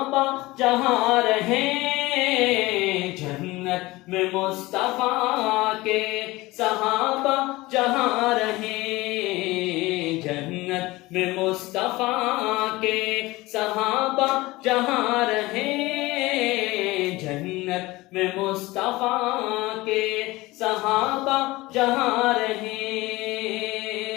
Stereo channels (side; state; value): right; quieter; 20.3 dB